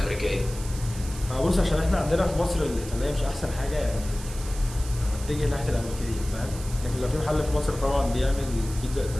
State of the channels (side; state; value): right; noise; hiss, 14 dB below the sound